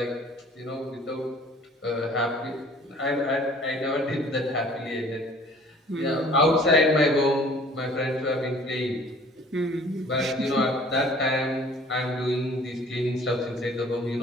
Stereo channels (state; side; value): normal; both; correlation 0.52